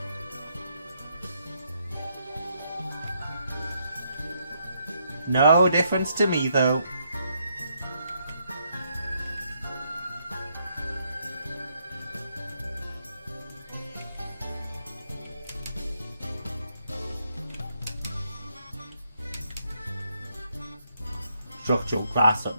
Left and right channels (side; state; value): both; inverted; correlation -0.75